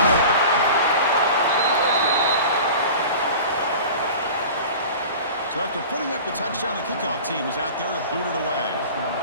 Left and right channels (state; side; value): inverted; both; correlation -0.37